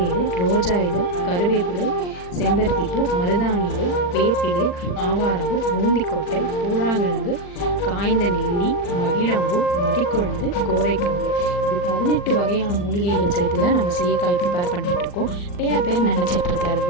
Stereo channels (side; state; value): right; late; 40 ms